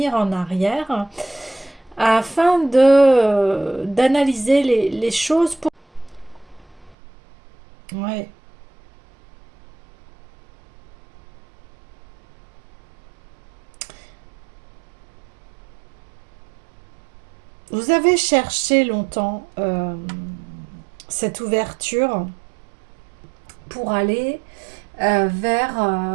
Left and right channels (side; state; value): left; drops out; at 7.0 s